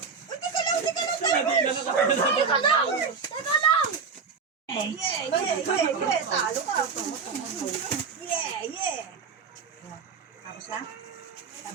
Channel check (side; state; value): left; quieter; 5.4 dB